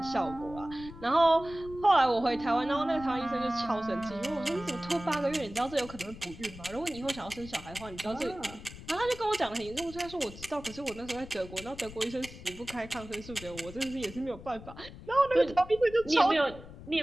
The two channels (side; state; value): left; noise; rumble, 15 dB below the sound